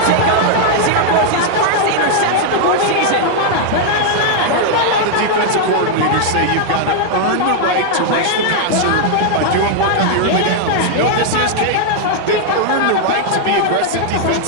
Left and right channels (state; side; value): different; both; correlation 0.00